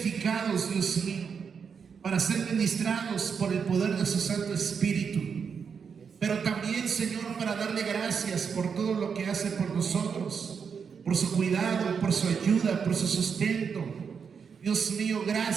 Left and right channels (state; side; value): quieter; left; 6.3 dB